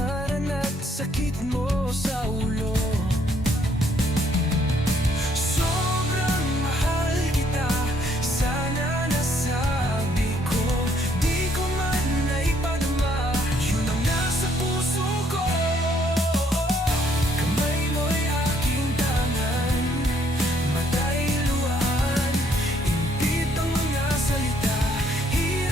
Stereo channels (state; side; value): normal; both; correlation 0.68